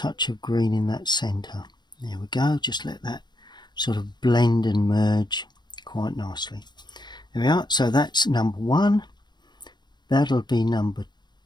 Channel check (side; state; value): right; late; 0.21 ms